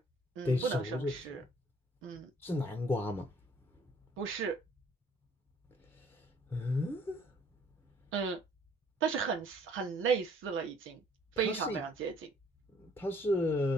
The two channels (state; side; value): normal; both; correlation 0.59